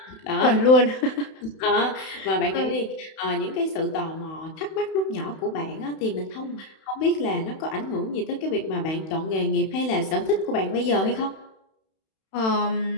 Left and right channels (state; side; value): late; right; 31 ms